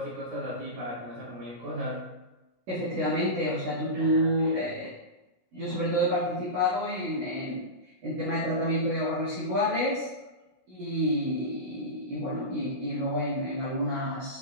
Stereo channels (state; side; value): late; left; 17 ms